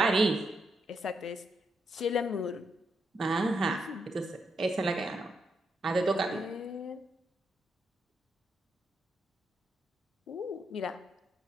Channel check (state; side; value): normal; both; correlation 0.80